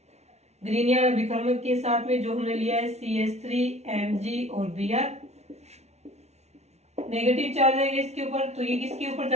ग्रीनियर अभिकर्मक के साथ में, जो हमने लिया है CH3 और Br। नेगेटिव चार्ज है इसके ऊपर, तो ये किसके ऊपर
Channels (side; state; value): left; late; 0.32 ms